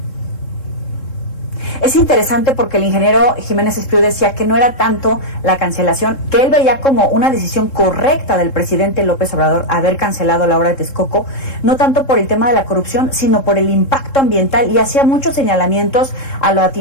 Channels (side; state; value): right; late; 3.7 ms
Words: Es interesante porque el ingeniero Jiménez Espriu decía que no era tanto la cancelación, que él veía como una decisión correcta del presidente López Obrador haber cancelado la obra de Texcoco, no tanto por el tema de la corrupción, sino por el impacto ambiental, y hacía muchos señalamientos a lo